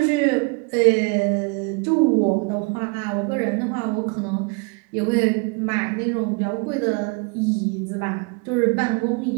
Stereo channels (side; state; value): left; quieter; 30.8 dB